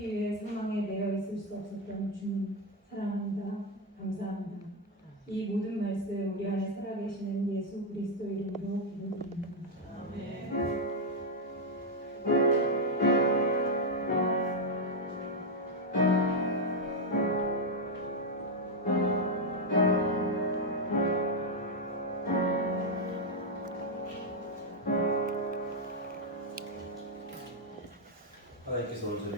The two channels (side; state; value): both; normal; correlation 0.02